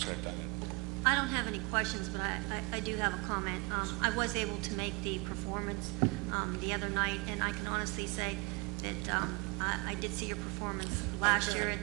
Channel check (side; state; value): left; quieter; 26.6 dB